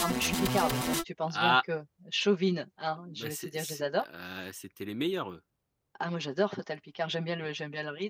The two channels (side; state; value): both; identical; correlation 1.00